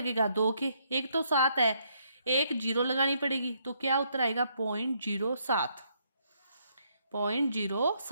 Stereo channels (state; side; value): inverted; both; correlation -0.72